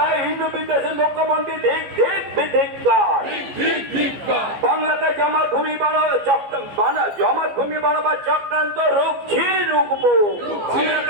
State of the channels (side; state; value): left; late; 14 ms